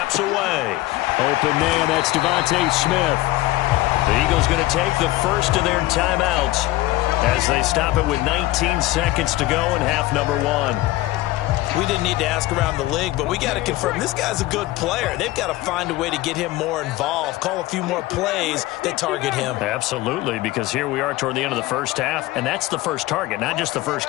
away. Open man, that's Devontae Smith. The Eagles going to take the first of their timeouts as they stop it with 19 seconds to go in half number 1. We didn't need to ask around the league, but we got to confirm this guy's a good player. They've got to find a way to get him more involved, call a few more plays that target him. Absolutely, because here we are toward the end of the first half, and that's the first target, not just the first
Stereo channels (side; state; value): right; quieter; 17.6 dB